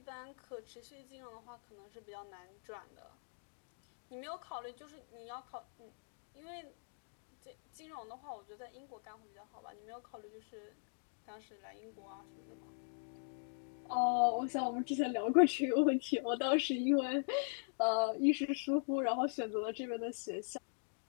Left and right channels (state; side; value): silent; right; digital silence